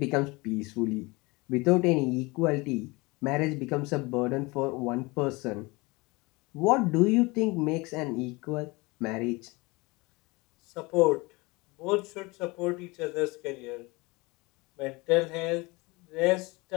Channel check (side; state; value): right; quieter; 24.7 dB